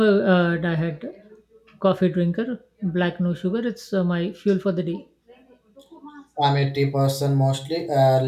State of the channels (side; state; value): both; identical; correlation 1.00